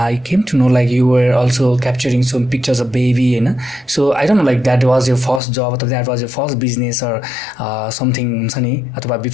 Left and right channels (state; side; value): drops out; right; at 5.4 s